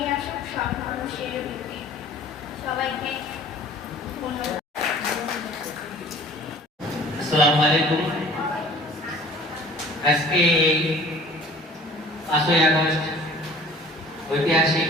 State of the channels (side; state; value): both; normal; correlation 0.48